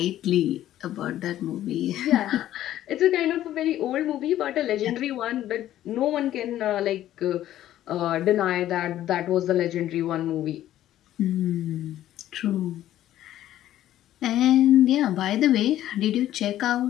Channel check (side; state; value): right; quieter; 12.9 dB